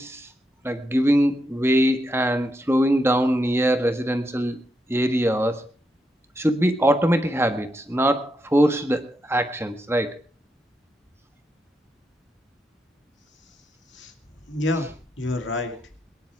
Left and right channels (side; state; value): both; normal; correlation 0.82